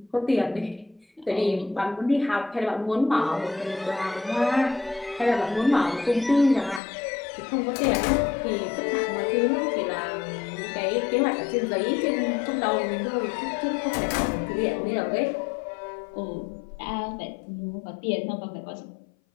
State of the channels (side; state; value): right; drops out; at 6.8 s